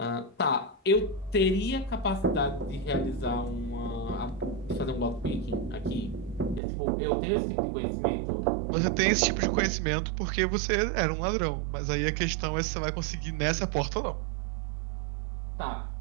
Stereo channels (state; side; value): drops out; left; at 6.6 s